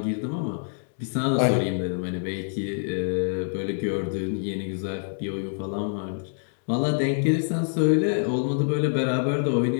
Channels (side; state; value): right; silent; digital silence